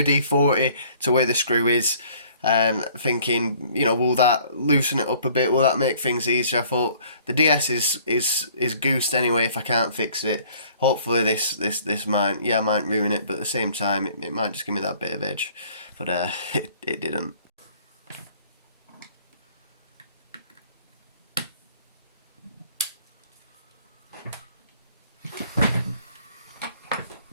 to where the screw is, thinking, you know, will that loosen it up a bit? Will that make things easier? I thought the DS is goosed anyway if I can't fix it. Hopefully this might ruin it, but at the same time it might just give me that bit of edge. But it didn't.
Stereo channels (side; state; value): both; inverted; correlation -0.56